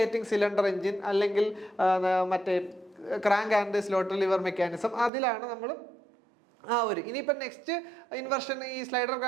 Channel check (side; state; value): left; drops out; at 5.1 s